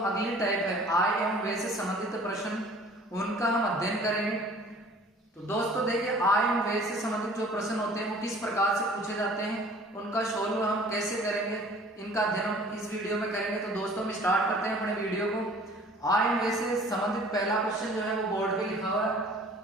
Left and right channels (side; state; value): both; normal; correlation 0.50